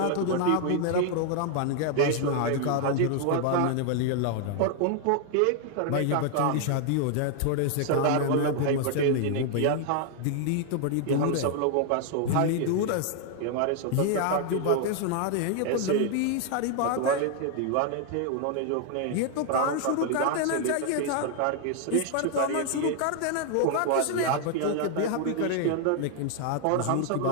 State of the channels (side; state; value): both; different; correlation 0.00